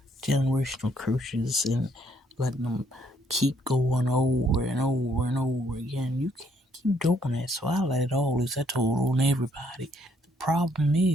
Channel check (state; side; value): normal; both; correlation 0.69